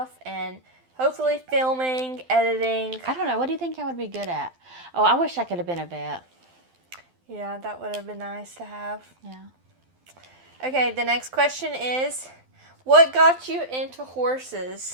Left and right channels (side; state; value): left; late; 12 ms